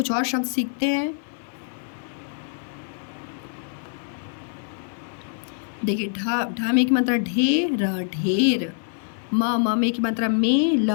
और शब्द सीखते हैं। देखिए ढ में की मात्रा ढेर ढेर। म में की मात्रा में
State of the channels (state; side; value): silent; right; 62 dB below the other